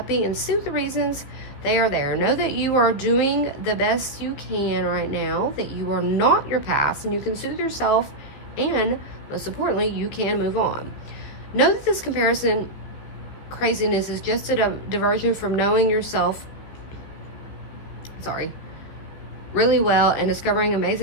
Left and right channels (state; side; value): late; right; 15 ms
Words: and soothe the reasons they are there. Know that you are doing the best you can right now, that you are not your past, and you can soothe yourself, and most importantly, you can move on. Know that this comparison craziness is just a diversion from knowing yourself, really well and discovering